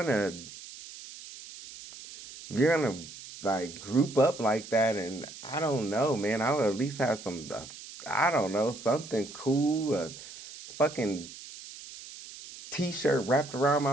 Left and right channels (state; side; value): noise; right; hiss, 15 dB below the sound